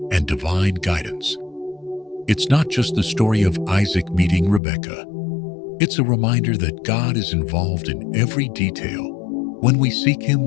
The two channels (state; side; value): drops out; right; at 4.6 s